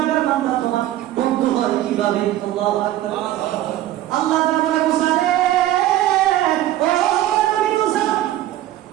বান্দা তোমার বন্ধু হয় কিভাবে? আল্লাহু আকবার। আল্লাহ তাআলা বলে, মুসা রে, ও নবী মুসা,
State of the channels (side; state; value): left; quieter; 13.7 dB